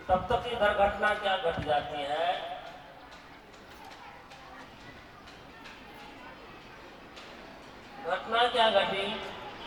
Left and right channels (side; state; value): both; identical; correlation 1.00